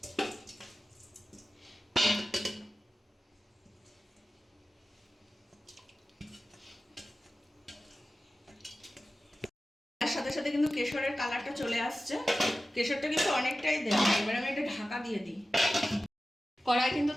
সাথে সাথে কিন্তু কেশরের কালারটা চলে আসছে, কেশরটা কিন্তু অনেকটাই দেওয়া। এবার আমি এটা ঢাকা দিয়ে দিই। কড়াই কিন্তু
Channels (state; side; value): normal; both; correlation 0.95